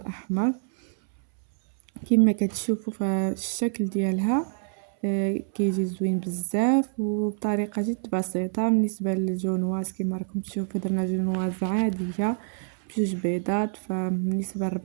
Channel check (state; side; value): silent; left; 60 dB below the other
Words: كما كتشوفوا. فالشكل ديالها كيجي زوين بزاف وبطريقه جد بسيطه. بالنسبه للجونواز كما راكم تشوفوا درنا جونواز عاديه بجوج بيضات. فبالنسبه